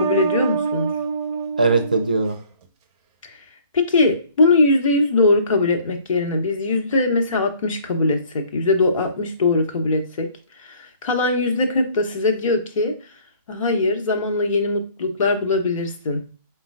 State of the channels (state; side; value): inverted; both; correlation -0.55